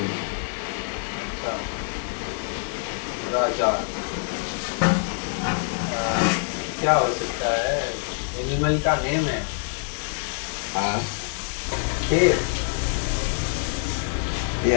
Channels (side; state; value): right; silent; digital silence